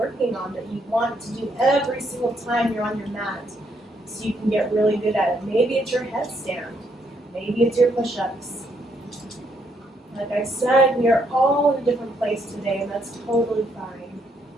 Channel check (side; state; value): both; normal; correlation 0.73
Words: on, that you want to do every single time you're on your mat, so you can get really good at it. Maybe it's your headstand. Maybe it's your push-ups. Like I said, we are all in a different place today, and that's totally fine.